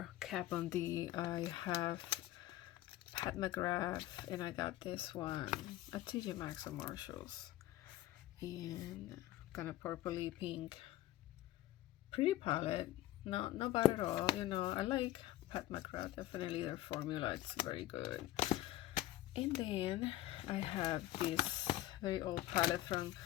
Kat Von D, I have Pat McGrath, and I got this one at TJ Maxx or Marshalls, and kind of purpley pink, pretty palette. Not bad at all. You know, I like Pat McGrath. Definitely their formula, it's very good. And then I have this very old palette from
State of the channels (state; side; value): quieter; right; 15.1 dB